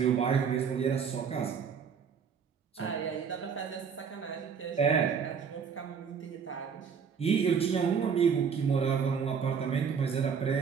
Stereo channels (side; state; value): left; quieter; 6.6 dB